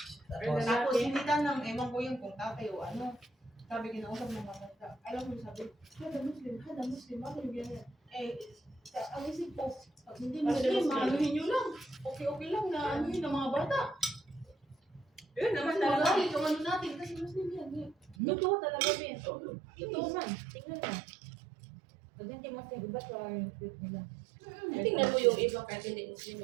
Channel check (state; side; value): drops out; left; at 18.2 s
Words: Tapos, Tapos hindi tanong, ewan ko yung kung tatay o ano. Sabi, kinausap ng matanda. Alam mo, sabi, hada Muslim, bakit yung ganyan? Ang isip ko, pag hindi Muslim, maanuhin nyo lang. Okay lang na ano yun ng mga bata. Yun naman Kasi talaga. magalit yung ano natin, kasi Muslim yan. Totoo talaga, Ben. Totoo man. Tingnan mo. Pag hindi mo sa iba, so yung truth nila. Tingnan mo yung iba kahit hindi Muslim